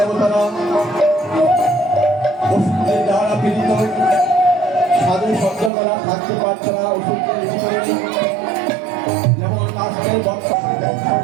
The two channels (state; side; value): drops out; left; at 5.7 s